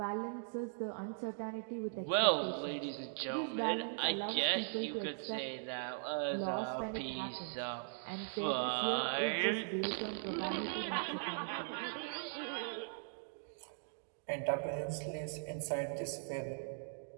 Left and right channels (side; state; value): left; silent; digital silence